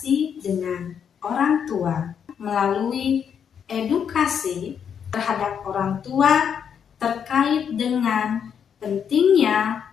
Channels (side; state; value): right; quieter; 7.8 dB